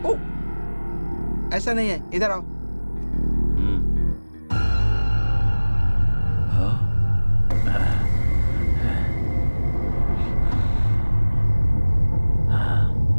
ऐसा नहीं है, इधर आओ।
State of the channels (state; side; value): inverted; both; correlation -1.00